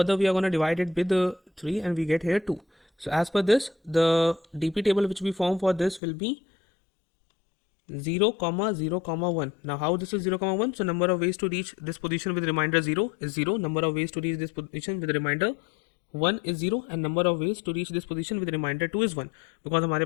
we are going to divide it with 3 and we get here 2. So as per this, the DP table which we form for this will be 0, 0, 1. Now how this is 0, 1? So number of ways to reach this position with remainder 0 is 0. Number of ways to reach this position with remainder 1 is 0 and number of ways to reach this position with remainder 2 is 1, because हमारे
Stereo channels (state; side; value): drops out; right; at 6.0 s